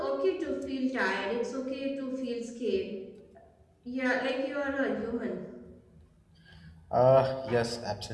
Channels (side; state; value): both; identical; correlation 1.00